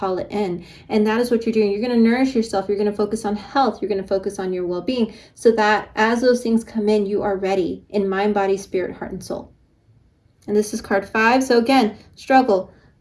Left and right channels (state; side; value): identical; both; correlation 1.00